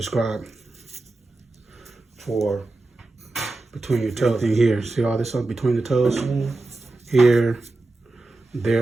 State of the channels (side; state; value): left; quieter; 3.1 dB